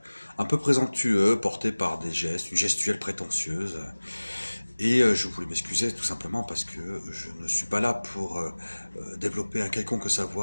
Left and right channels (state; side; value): inverted; both; correlation -1.00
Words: un peu présomptueux, porté par des gestes, une gestuelle prétentieuse. Et je voulais m'excuser tout simplement parce que je ne suis pas là pour développer un quelconque